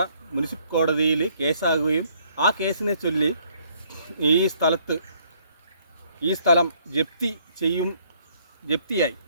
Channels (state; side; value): inverted; both; correlation -0.65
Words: മുനിസിപ്പൽ കോടതിയിൽ കേസാകുകയും ആ കേസിനെ ചൊല്ലി ഈ സ്ഥലം